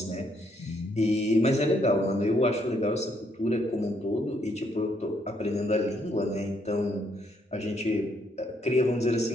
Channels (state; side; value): normal; both; correlation 0.72